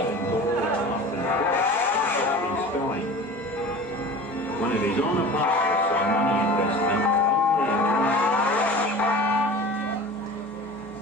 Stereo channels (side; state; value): both; normal; correlation 0.38